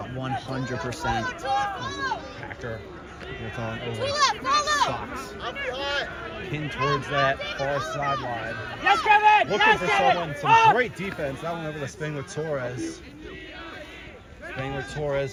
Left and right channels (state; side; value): identical; both; correlation 1.00